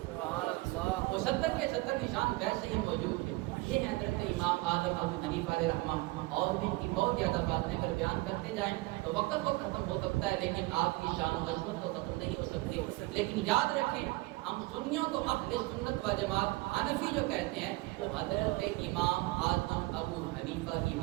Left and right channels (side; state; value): left; quieter; 22.2 dB